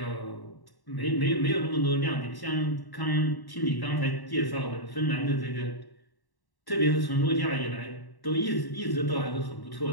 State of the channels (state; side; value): late; right; 1.1 ms